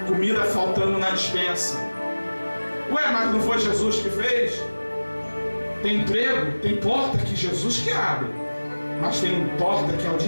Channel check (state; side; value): inverted; both; correlation -1.00